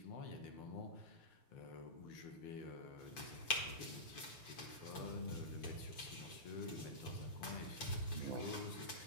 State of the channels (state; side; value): late; right; 7.1 ms